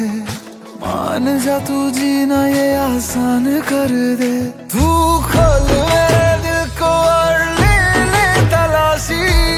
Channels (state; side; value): identical; both; correlation 1.00